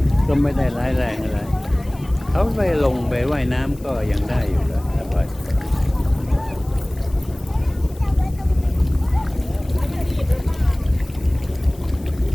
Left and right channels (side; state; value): left; noise; hiss, 25 dB below the sound